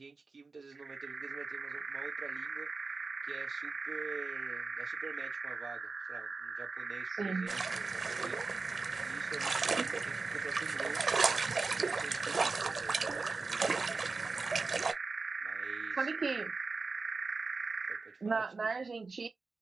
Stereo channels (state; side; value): quieter; left; 4.1 dB